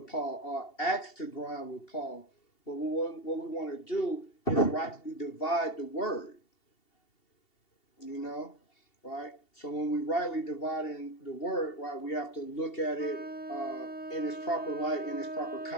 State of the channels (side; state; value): right; late; 2.7 ms